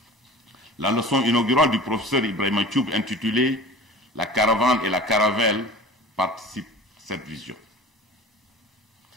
La leçon inaugurale du professeur Ibrahim Choub intitulée « La caravane et la caravelle » participe à cette vision.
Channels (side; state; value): both; normal; correlation 0.39